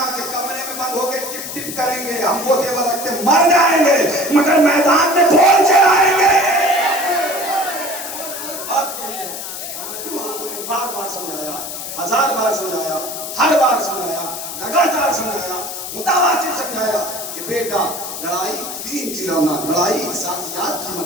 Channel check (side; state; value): left; noise; hiss, 8 dB below the sound